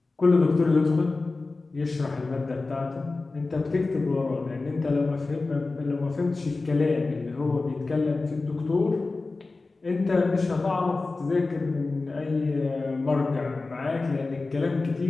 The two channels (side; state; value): right; quieter; 3.6 dB